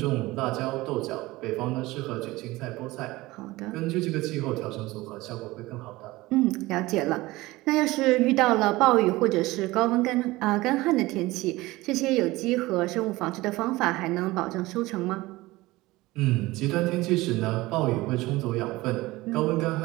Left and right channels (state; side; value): quieter; left; 19.6 dB